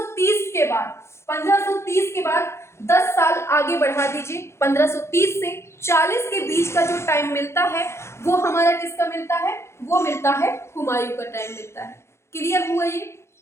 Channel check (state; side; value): late; right; 0.13 ms